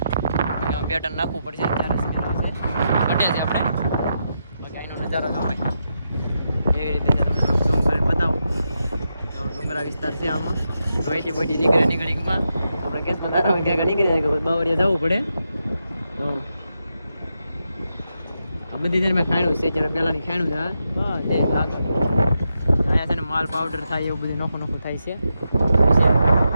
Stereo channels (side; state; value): both; inverted; correlation -0.85